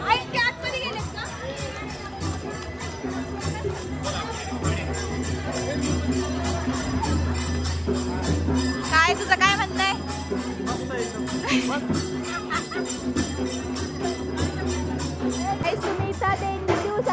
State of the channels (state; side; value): identical; both; correlation 1.00